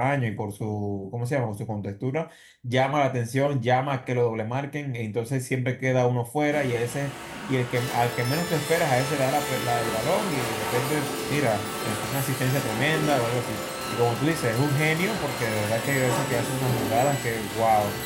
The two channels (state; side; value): identical; both; correlation 1.00